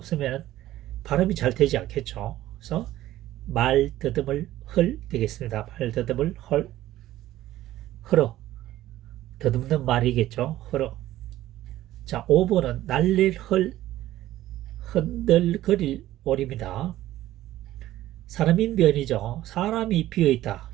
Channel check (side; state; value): left; quieter; 14.6 dB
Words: 발음이 잘 되지 않겠죠. 그래서 말 더듬을 헐 되겠습니다. 말 더듬을 헐어 더듬는 말이겠죠. 헐어. 자, 5번은 날릴 흔들거릴 오리입니다. 사람인변이죠. 사람이 비어있다.